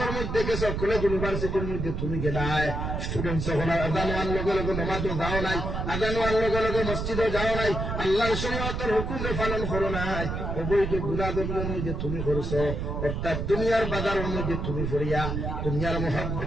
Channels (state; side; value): noise; right; rumble, 3 dB below the sound